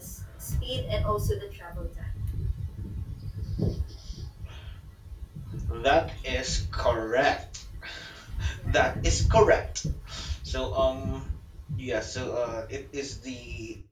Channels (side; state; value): both; identical; correlation 1.00